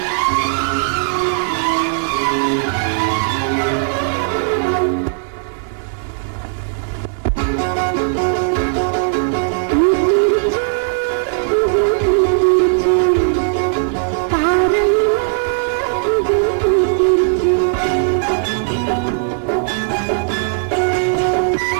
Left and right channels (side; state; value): left; silent; 68 dB below the other